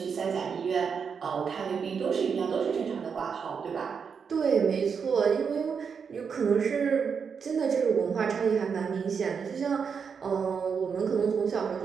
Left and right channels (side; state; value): left; quieter; 6.3 dB